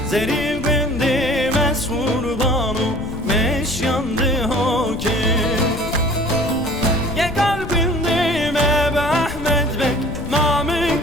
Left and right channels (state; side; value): noise; left; rumble, 11 dB below the sound